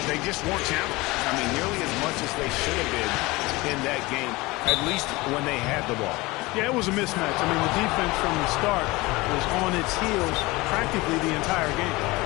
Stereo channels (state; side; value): quieter; right; 21.9 dB